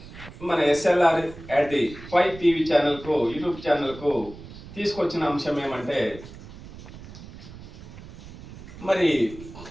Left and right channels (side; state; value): right; noise; rumble, 15 dB below the sound